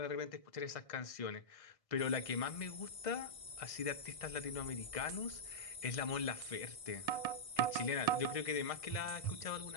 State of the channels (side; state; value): right; late; 1.6 ms